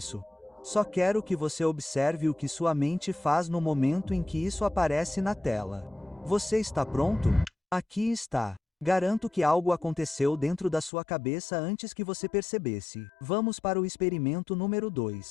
Só quero que você observe o que sua mente faz no momento em que isso aparece na tela. Você está pronto? Aqui está. Garanto que algo aconteceu dentro da sua cabeça antes que você percebesse. Vamos para o experimento número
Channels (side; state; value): right; drops out; at 10.9 s